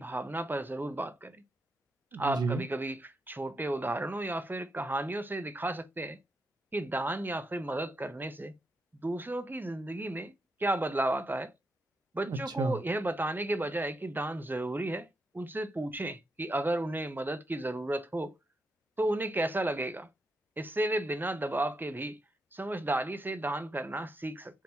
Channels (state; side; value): normal; both; correlation 0.82